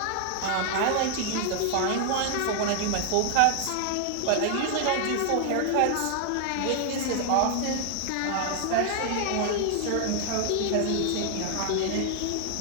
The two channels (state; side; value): different; both; correlation 0.00